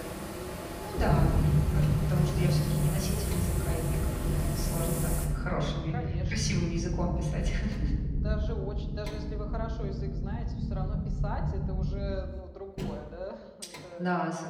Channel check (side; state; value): both; identical; correlation 1.00